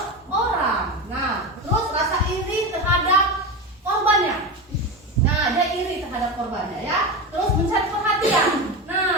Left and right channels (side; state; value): both; normal; correlation 0.21